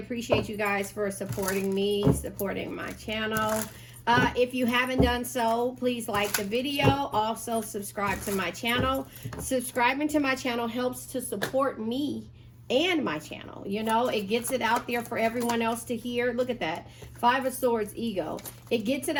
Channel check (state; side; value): identical; both; correlation 1.00